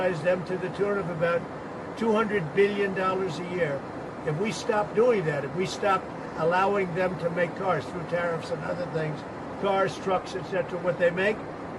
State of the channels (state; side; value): identical; both; correlation 1.00